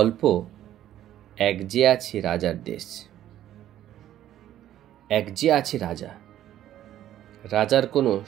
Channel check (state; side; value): quieter; left; 12.2 dB